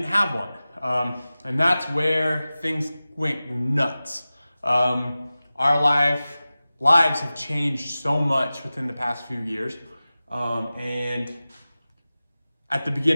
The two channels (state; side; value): inverted; both; correlation -0.96